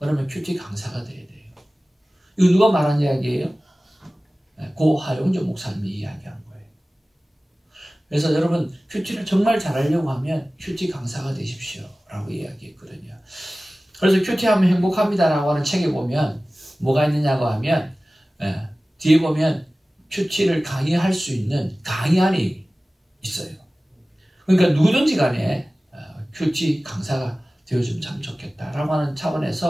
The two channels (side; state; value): both; normal; correlation 0.97